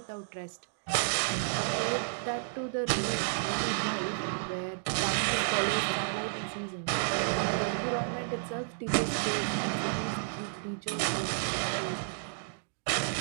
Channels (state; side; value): silent; left; digital silence